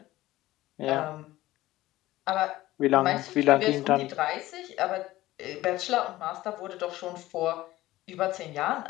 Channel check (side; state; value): right; quieter; 16.6 dB